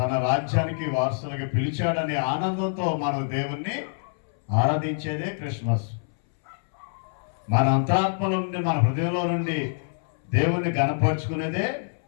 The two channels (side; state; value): right; silent; 61 dB below the other